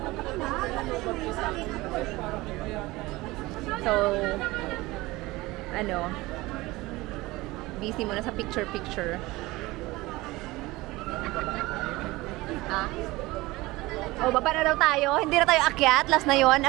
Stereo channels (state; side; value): quieter; left; 20.3 dB